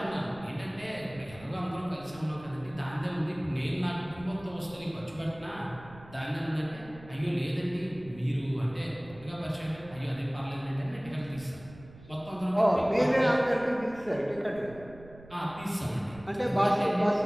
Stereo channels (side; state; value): right; noise; rumble, 19 dB below the sound